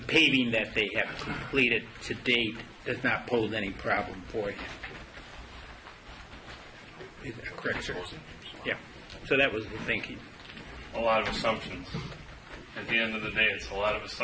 paving that they have completed to date does not pose any problem for him. Is that correct, sir? Yeah. So that was the thinking. A lot of assumptions. At the end of the day, it's a lot of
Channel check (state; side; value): identical; both; correlation 1.00